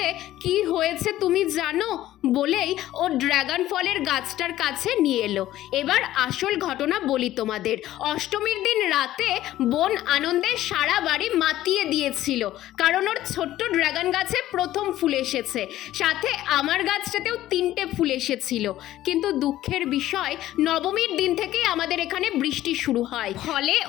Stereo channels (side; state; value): right; quieter; 14.2 dB